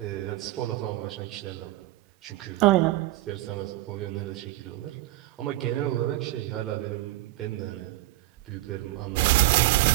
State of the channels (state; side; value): quieter; left; 17.5 dB